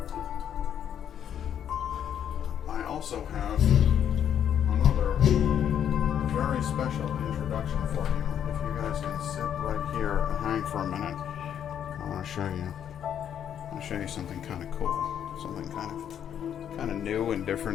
I also have another very special introduction for you. If you guys can sit right here and hang for a minute, I want to show you. I want to show you something kind of cool, something kind of new and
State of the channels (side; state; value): right; quieter; 9.3 dB